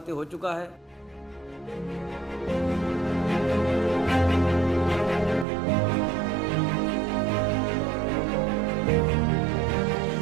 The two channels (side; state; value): left; drops out; at 5.5 s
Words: हो चुका है।